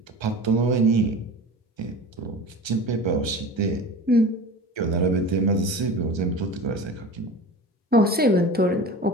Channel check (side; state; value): both; normal; correlation 0.35